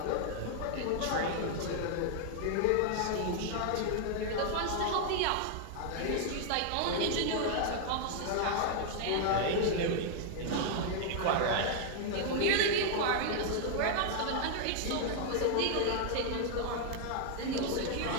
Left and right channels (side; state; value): both; different; correlation 0.00